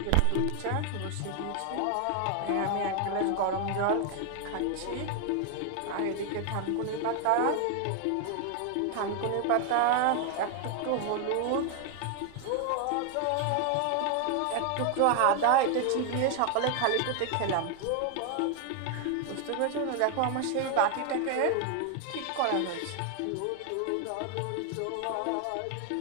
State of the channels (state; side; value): different; both; correlation 0.00